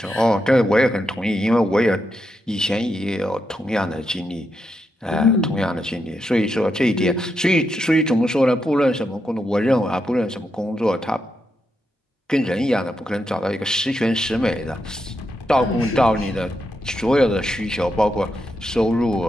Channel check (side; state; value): both; normal; correlation 0.84